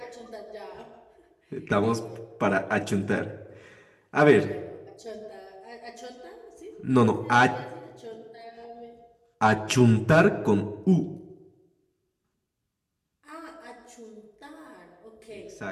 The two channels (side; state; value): both; identical; correlation 1.00